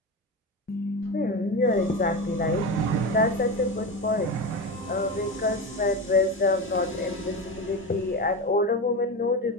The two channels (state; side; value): normal; both; correlation 0.21